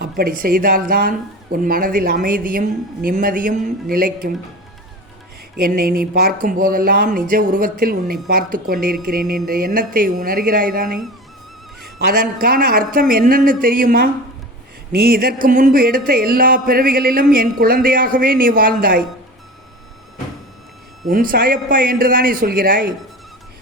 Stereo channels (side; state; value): both; normal; correlation 0.32